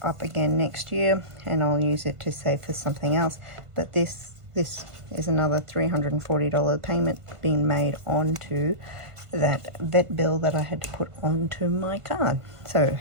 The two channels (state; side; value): late; left; 1.5 ms